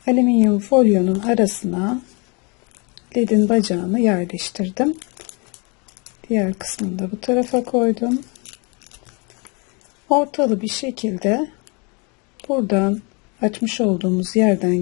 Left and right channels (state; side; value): quieter; right; 31.9 dB